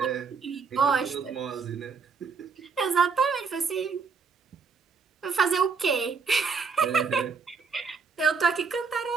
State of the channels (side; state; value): left; quieter; 5.4 dB